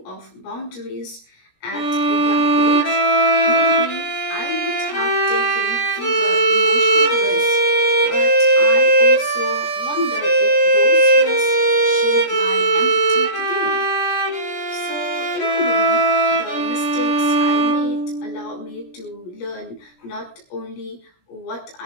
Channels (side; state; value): right; late; 17 ms